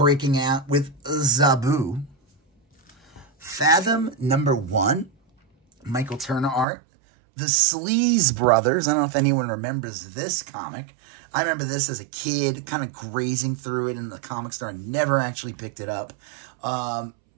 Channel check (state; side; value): drops out; left; at 6.7 s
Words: out with Zabu. Fathom number 1. Michael Turner art. The Sleaze Brothers. I don't know if anyone remembers this comic. I remember this as a kid, kind of grazing through it in the comic store. I never actually picked it up. I